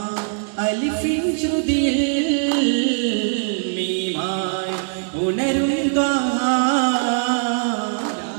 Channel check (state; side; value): silent; left; digital silence